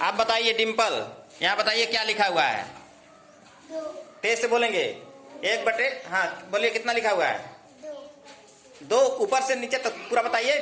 बताइए। डिम्पल, यहाँ बताइए क्या लिखा हुआ है। तेज से बोलेंगे। 1/, हाँ बोलिए, कितना लिखा हुआ है? 2। ऊपर से नीचे तक पूरा बताइए।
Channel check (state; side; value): identical; both; correlation 1.00